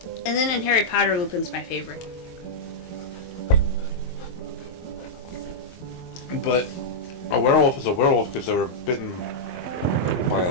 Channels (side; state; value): right; late; 23 ms